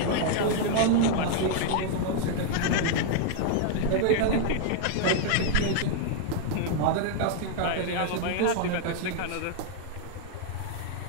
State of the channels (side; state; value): both; different; correlation -0.01